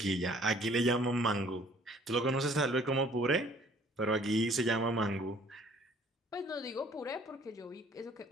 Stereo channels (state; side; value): normal; both; correlation 0.57